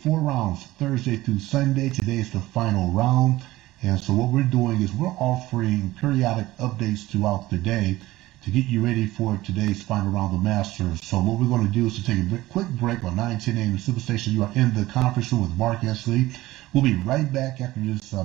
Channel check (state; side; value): quieter; left; 17.3 dB